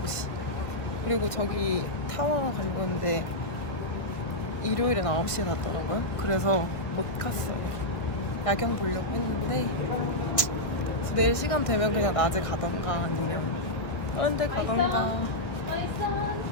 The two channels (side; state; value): right; late; 1.4 ms